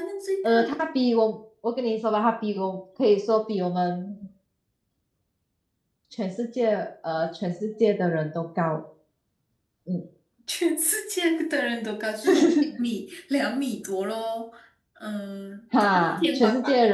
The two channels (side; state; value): both; identical; correlation 1.00